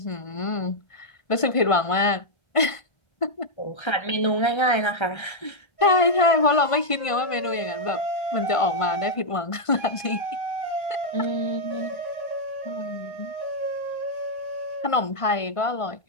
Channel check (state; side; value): late; right; 1.5 ms